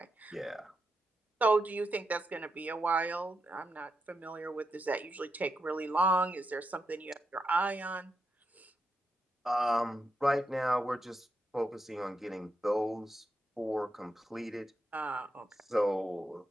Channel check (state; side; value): normal; both; correlation 0.85